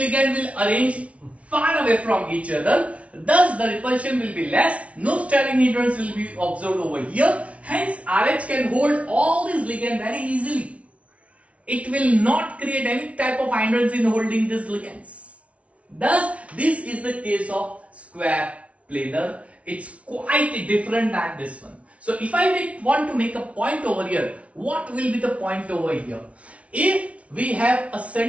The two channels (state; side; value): late; left; 0.064 ms